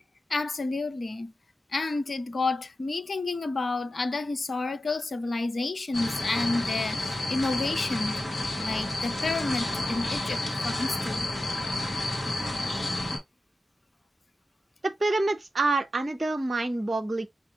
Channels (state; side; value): normal; both; correlation 0.92